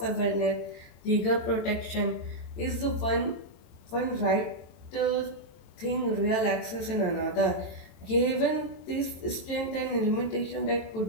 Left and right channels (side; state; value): right; late; 22 ms